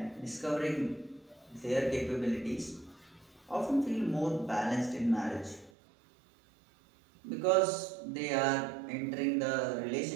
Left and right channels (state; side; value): drops out; left; at 5.7 s